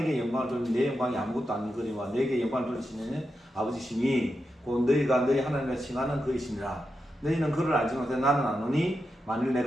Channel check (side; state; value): both; normal; correlation 0.88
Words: 영광을 돌리니 내 영광이 아무것도 아니거니와 내게 영광을 돌리시는 아버지시니 곧 너희가 너희 하나님을 칭하는 그이시니라. 너희는 그를 알지 못해 나는 아노니 만일